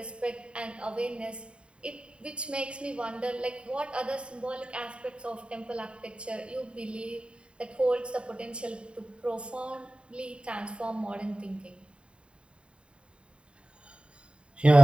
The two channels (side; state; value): left; late; 0.054 ms